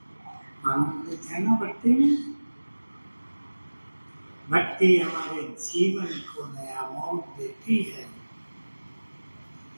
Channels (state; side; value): inverted; both; correlation -1.00